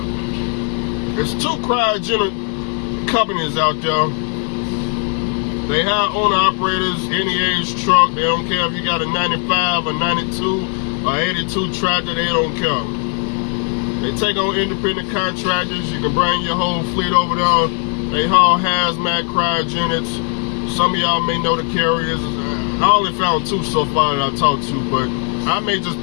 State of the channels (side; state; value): right; quieter; 39.5 dB